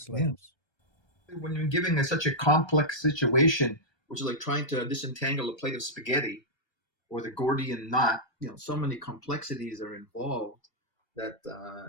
lives. Yeah. When you're giving such a complex situation, or trying to disentangle a plate of spaghetti, or the Gordian knot, so many complexities are involved that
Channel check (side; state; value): right; late; 1.3 ms